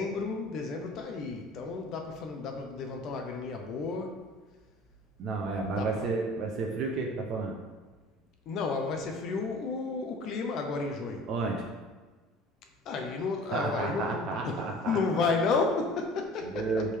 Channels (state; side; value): normal; both; correlation 0.45